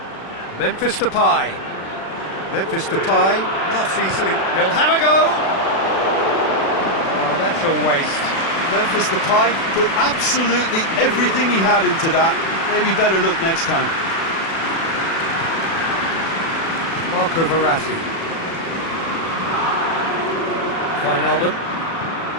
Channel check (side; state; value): right; late; 36 ms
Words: Memphis Depay. Memphis Depay, not easily. He'll have a go. Oh, that's a waste. Memphis Depay put absolutely everything he had into that. Maybe better look next time. Marco Verratti. Wijnaldum.